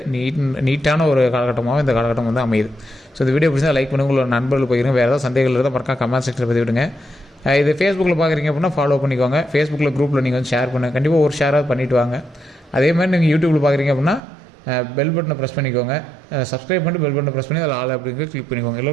நீட்டான ஒரு காலகட்டமாகவும் இந்த காலகட்டம் வந்து அமையுது. ஸோ இந்த வீடியோ பிடிச்சா லைக் பண்ணுங்கள், உங்களோட நண்பர்கள் போயிருங்க. வேறு ஏதாவது சந்தேகங்கள் இருந்தால் மறக்காம கமெண்ட் செக்ஷனில் பதிவு விடுங்க. இது ஃபேஸ்புக்கில் பார்க்குறீங்க அப்படின்னா ஃபாலோ பண்ணிக்கோங்க. ஃபேஸ்புக்கில் குரூப்பில் நீங்கள் வந்து ஷேர் பண்ணுங்கள். கண்டிப்பாக ஒரு ஷேராக பண்ணிவிட்டு வாங்க. அதே மாதிரி நீங்கள் யூடியூப்பில் பார்க்குறீங்க அப்படின்னா பெல் பட்டனை ப்ரெஸ் பண்ணிக்கோங்க. சப்ஸ்கிரைப் பண்ணிட்டு பெல் பட்டனை ப்ரெஸ் பண்ணி அதில் ஆல் அப்படிங்கிற கிளிக் பண்ணிக்கோங்க.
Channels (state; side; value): drops out; left; at 14.2 s